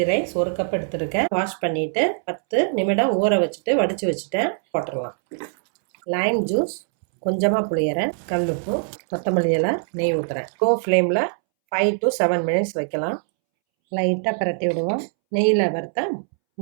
ரைஸ் 1 கப் எடுத்துருக்கேன். வாஷ் பண்ணிவிட்டு 10 நிமிடம் ஊற வச்சுட்டு வடித்து வச்சுட்டேன். போட்டுடலாம். லைம் ஜூஸ் கொஞ்சமாக புளியறேன், கல்லுப்பு, கொத்தமல்லி இலை, நெய் ஊற்றுறேன். லோ ஃப்ளேமில் 5 to 7 மினிட்ஸ் வைக்கலாம். லைட்டாக பிரட்டி விடுவோம். நெய்யில் வறுத்த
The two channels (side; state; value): left; silent; 64 dB below the other